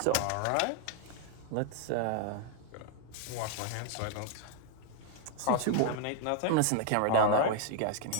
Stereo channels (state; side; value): different; both; correlation 0.00